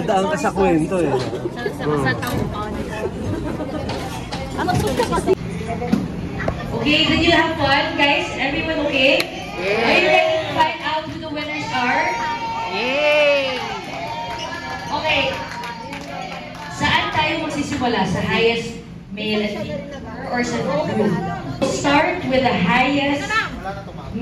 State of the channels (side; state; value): both; identical; correlation 1.00